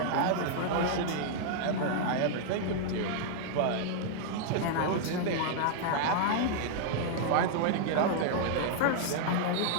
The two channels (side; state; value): both; different; correlation -0.01